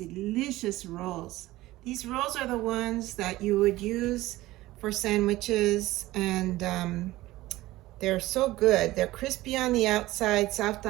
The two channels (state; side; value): quieter; left; 17.4 dB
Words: rolls. These rolls are the ones that you would use for sandwiches, and they're so good. They're crispy on the outside, soft